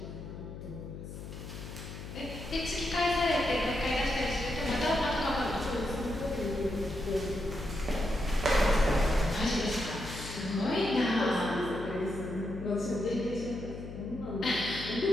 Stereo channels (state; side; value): noise; left; hum, 10 dB below the sound